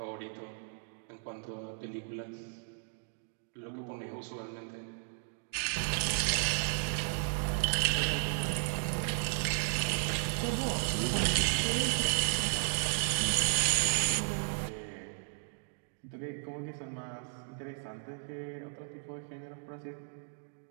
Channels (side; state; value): left; silent; digital silence